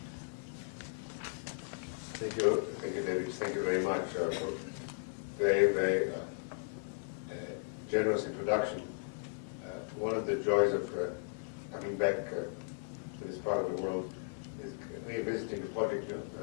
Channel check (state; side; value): silent; right; digital silence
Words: Thank you, David. Thank you very much for very, very generous introduction. One of the joys of coming back to this part of the world is revisiting the project